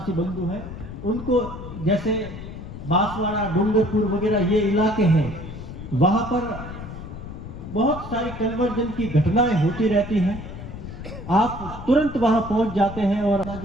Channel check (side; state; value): left; noise; rumble, 11 dB below the sound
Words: बंधु हैं उनको, जैसे बांसवाड़ा, डूंगरपुर वगैरह ये इलाके हैं, वहां पर बहुत सारी कन्वर्जन की घटनाएं होती रहती हैं। आप तुरंत वहां पहुंच जाते हैं और